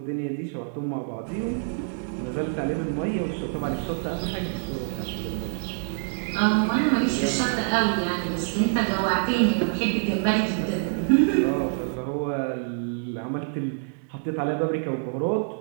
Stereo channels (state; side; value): silent; left; digital silence